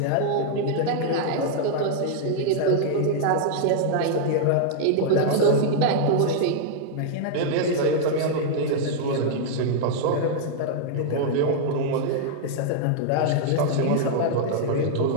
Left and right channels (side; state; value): both; different; correlation -0.01